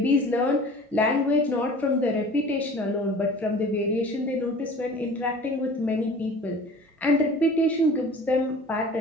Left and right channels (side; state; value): both; normal; correlation 0.43